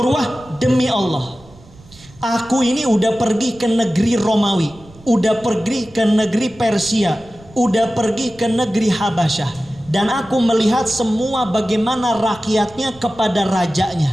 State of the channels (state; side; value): noise; right; rumble, 24 dB below the sound